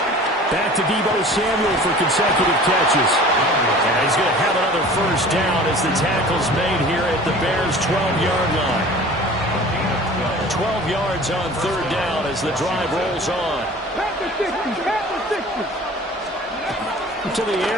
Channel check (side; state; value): both; normal; correlation 0.43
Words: Back to Deebo Samuel for consecutive catches. And he's going to have another first down as the tackle's made here at the Bears' 12-yard line. 12 yards on 3rd down as the drive rolls on. To the